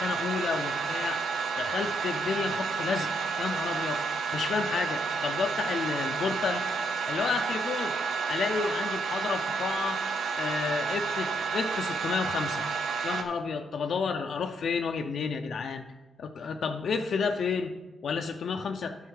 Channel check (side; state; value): both; normal; correlation 0.73